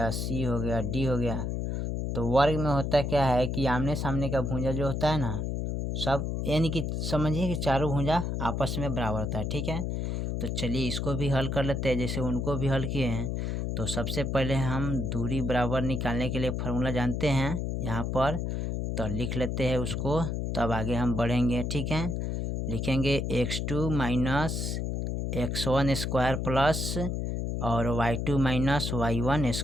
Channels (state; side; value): noise; left; hum, 1 dB below the sound